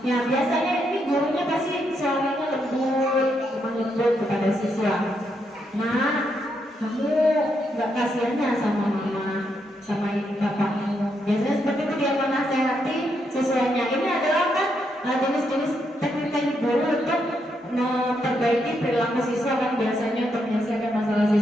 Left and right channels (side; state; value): both; normal; correlation 0.79